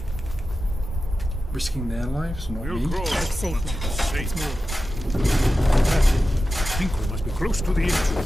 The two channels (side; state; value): both; normal; correlation 0.93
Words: risking their lives, not me? It's safe now. Let's move. That's it. I think we must be close to the